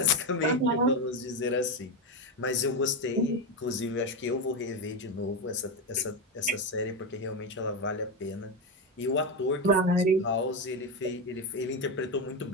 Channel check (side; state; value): both; normal; correlation 0.12